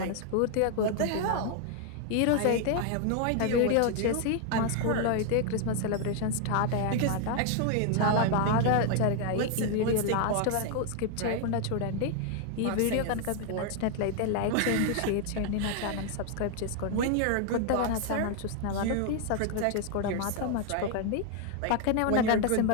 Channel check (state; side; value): different; both; correlation 0.00